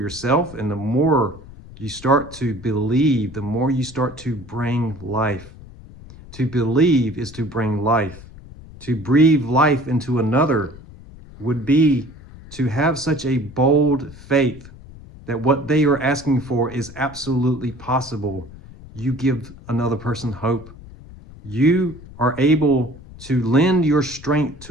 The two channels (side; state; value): left; noise; rumble, 18 dB below the sound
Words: and the more you start to believe, the more you start to bring life. To believe is to bring life. To breathe life into another would be to have such a bold faith that what they are asking for is absolutely possible. You give another person hope. You are able to lend your strength